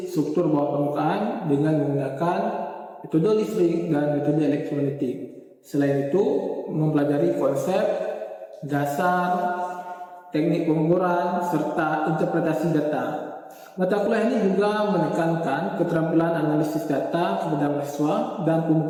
struktur bawah permukaan dengan menggunakan metode listrik dan metode elektromagnetik. Selain itu, mempelajari konsep, dasar, teknik pengukuran, serta interpretasi data. Mata kuliah ini juga menekankan keterampilan analisis data kepada mahasiswa dan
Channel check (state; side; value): identical; both; correlation 1.00